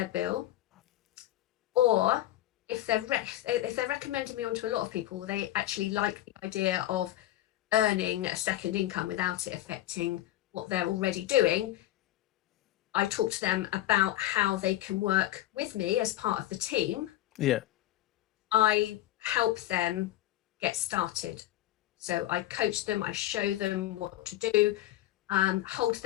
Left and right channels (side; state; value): right; quieter; 14.6 dB